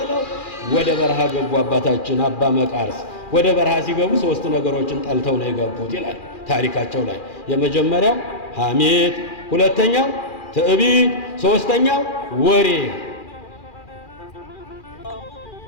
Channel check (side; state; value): right; late; 2.4 ms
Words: ወደ በረሃ ገቡ። አባታችን አባ መቃርስ ወደ በረሃ ሲገቡ ሶስት ነገሮችን ጠልተው ነው የገቡት ይላል ታሪካቸው ላይ። የመጀመሪያው ሐሜት፣ ሁለተኛው ትዕቢት፣ ሶስተኛው ወሬ።